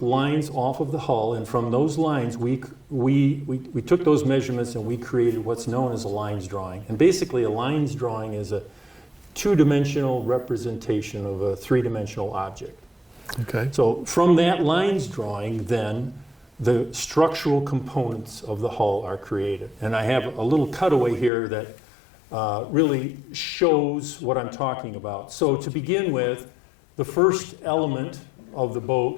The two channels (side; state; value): right; drops out; at 21.3 s